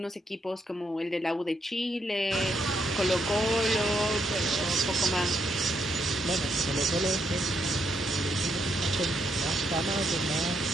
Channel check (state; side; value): normal; both; correlation 0.76